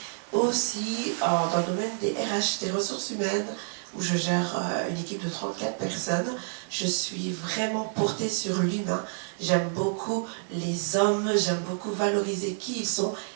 aussi dans le domaine des RH, des ressources humaines, où je gère une équipe de 34 personnes. Je suis vraiment portée sur l'humain. J'aime beaucoup les hommes, j'aime beaucoup valoriser qui ils sont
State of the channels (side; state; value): left; silent; digital silence